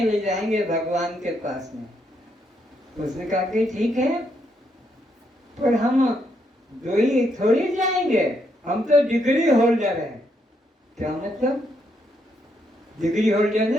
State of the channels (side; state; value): both; normal; correlation 0.76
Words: ले जाएंगे भगवान के पास में। उसने कहा कि ठीक है, पर हम दो ही थोड़ी जाएंगे, हम तो डिग्री होल्डर हैं। क्या मतलब? डिग्री होल्डर